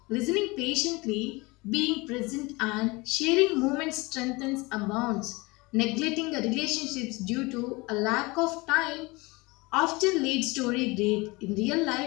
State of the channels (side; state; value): right; quieter; 24.3 dB